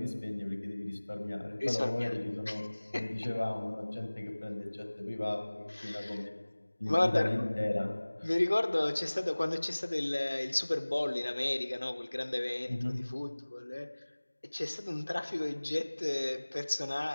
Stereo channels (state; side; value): inverted; both; correlation -1.00